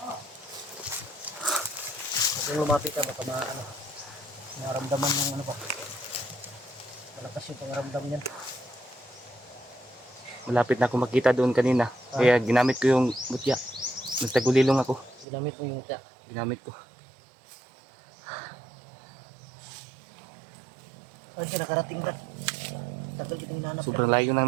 Kung lumapit ka baka naramdaman ng ano pa. Malakas yung pangaramdam niyan. Malapit na ako makita doon kanina. Kaya ginamit ko yung mutya. Nagtagulilong ako. Ginamit mo yung mutya. Ginamit ko. Saan ka nakarating, Brad? Tagal kitang hinanap. Sobrang layo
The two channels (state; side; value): drops out; left; at 15.2 s